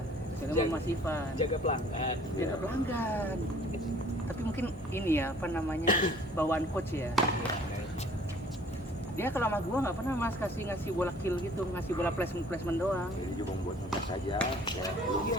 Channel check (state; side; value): normal; both; correlation 0.54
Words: Jadi sama Mas Ivan. Jaga pelanggan. Jaga pelanggan. Tapi mungkin ini ya apa namanya bawaan coach ya. Dia kalau sama gua nggak pernah mas ngasih bola kill gitu, ngasih bola placement doang. Jadi cuma buat ngetes aja, ya,